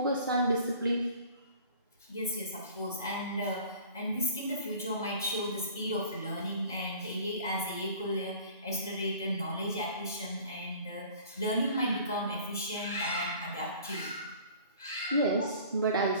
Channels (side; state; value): both; inverted; correlation -0.48